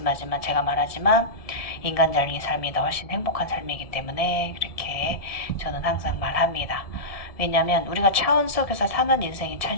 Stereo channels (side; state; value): right; late; 1.7 ms